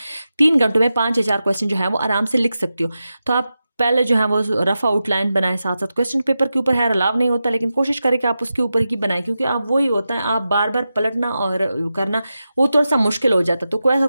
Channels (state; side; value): inverted; both; correlation -0.91